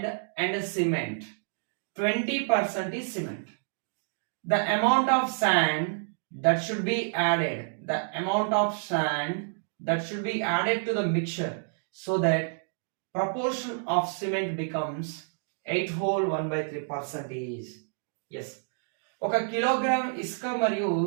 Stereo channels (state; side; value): silent; left; digital silence